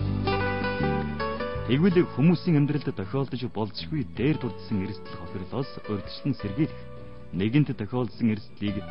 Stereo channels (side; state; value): both; identical; correlation 1.00